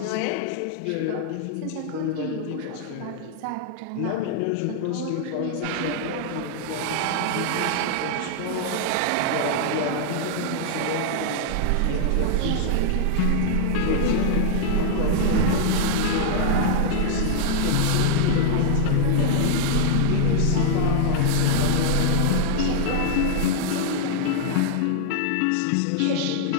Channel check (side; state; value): both; different; correlation -0.01